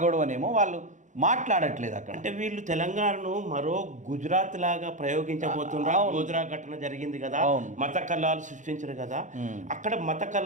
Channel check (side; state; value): left; late; 0.36 ms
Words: గొడవనేమో వాళ్ళు మాట్లాడట్లేదు అక్కడ. అంటే వీళ్ళు తెలంగాణను మరో గుజరాత్ లాగా ప్రయోగించబోతున్నారు. గోద్రా ఘటన జరిగింది కదా, మత కల్లాలు సృష్టించారు కదా. అక్కడ మత